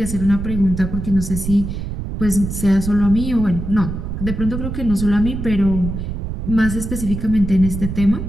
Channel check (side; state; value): right; noise; rumble, 5 dB below the sound